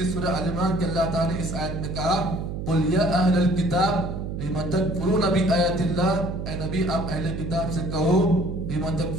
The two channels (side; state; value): right; noise; hum, 5 dB below the sound